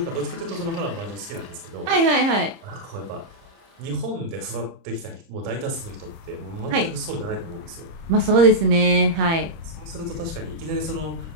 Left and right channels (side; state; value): left; late; 30 ms